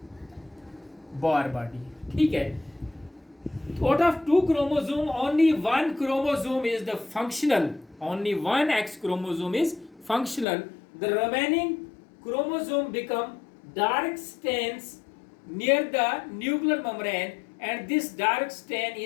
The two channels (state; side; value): drops out; right; at 10.5 s